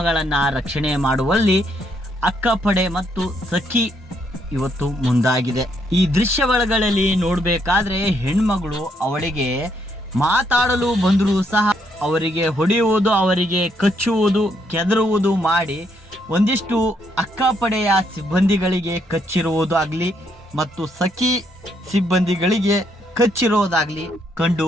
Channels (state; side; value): normal; both; correlation 0.73